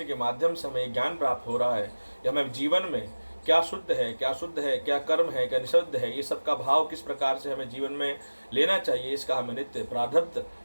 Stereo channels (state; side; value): inverted; both; correlation -1.00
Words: के माध्यम से हमें ज्ञान प्राप्त हो रहा है कि हमें जीवन में क्या शुद्ध है, क्या शुद्ध है, क्या कर्म है, क्या निषिद्ध है, ये सब का भाव किस प्रकार से हमें जीवन में लेना चाहिए, इसका हमें नित्य प्रारब्ध